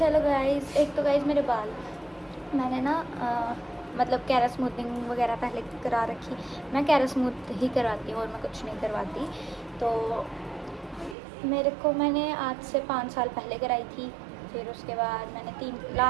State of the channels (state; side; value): drops out; left; at 11.2 s